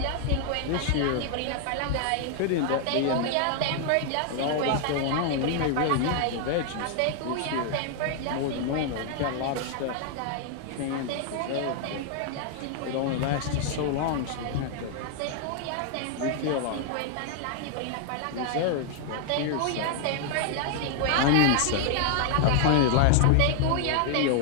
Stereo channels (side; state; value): both; different; correlation 0.00